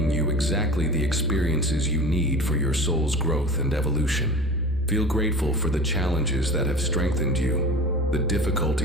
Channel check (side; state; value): both; normal; correlation 0.36